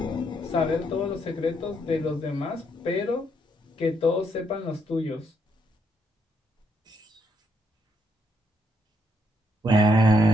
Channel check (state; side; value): normal; both; correlation 0.75